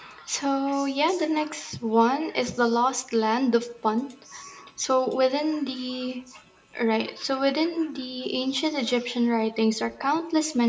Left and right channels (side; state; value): both; identical; correlation 1.00